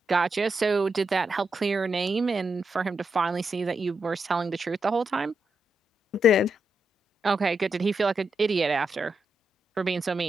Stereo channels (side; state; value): both; normal; correlation 0.84